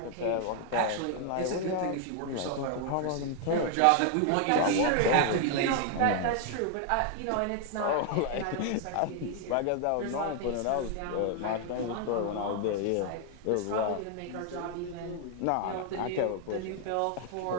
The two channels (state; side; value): different; both; correlation 0.00